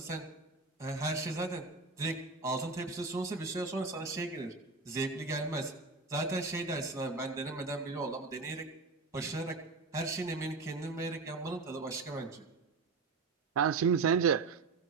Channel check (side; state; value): left; quieter; 4.0 dB